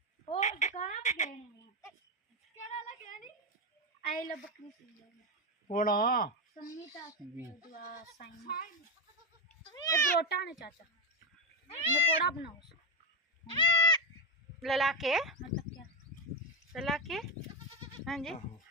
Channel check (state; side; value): normal; both; correlation 0.09